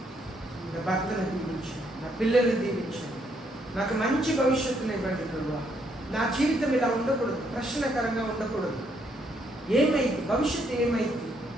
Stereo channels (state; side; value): normal; both; correlation 0.72